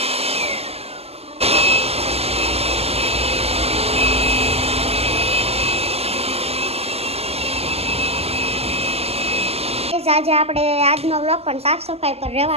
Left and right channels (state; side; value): late; left; 0.29 ms